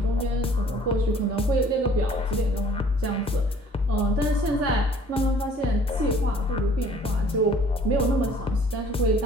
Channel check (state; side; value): normal; both; correlation 0.55